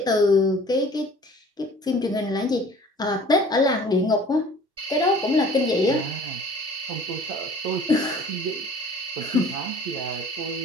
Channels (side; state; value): both; normal; correlation 0.49